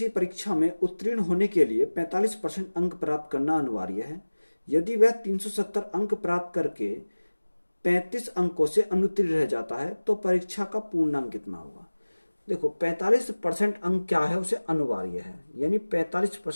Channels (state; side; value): inverted; both; correlation -1.00